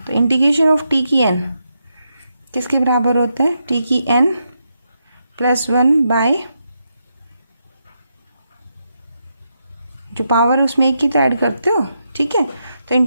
तो इंटीग्रेशन ऑफ t की n किसके बराबर होता है, t की n प्लस 1 बाय जो पावर है उसमें एक की तो ऐड करते हो, ठीक है। तो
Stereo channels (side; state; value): both; inverted; correlation -0.83